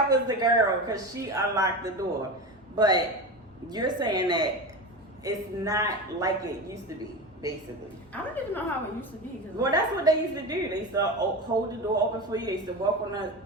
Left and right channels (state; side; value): normal; both; correlation 0.25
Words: was the girl because she unlocked the door. But you're saying that it's not like it used to be, basically. I don't even know how it used to be. Well, that's what they used to do. They used to hold the door open for you. They used to walk on